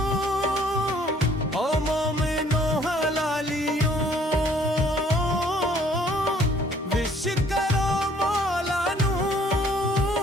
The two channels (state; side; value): normal; both; correlation 0.59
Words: ओ मोमिनो हलालियों, विश करो मौला नू